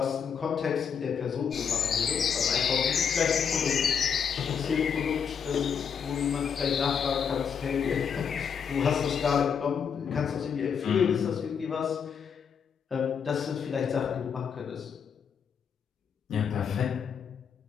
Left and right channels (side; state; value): right; quieter; 7.0 dB